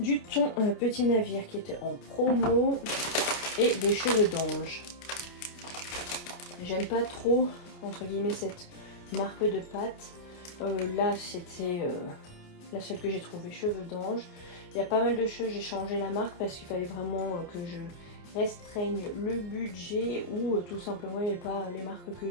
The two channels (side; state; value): right; late; 29 ms